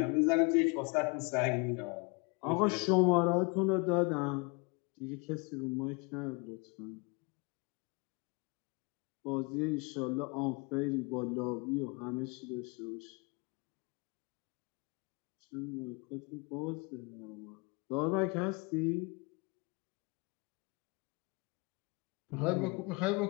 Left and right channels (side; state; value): right; quieter; 30.0 dB